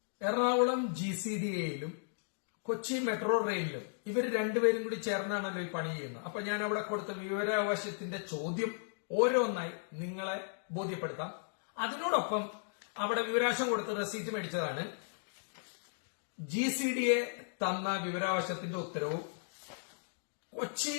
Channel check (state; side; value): silent; right; digital silence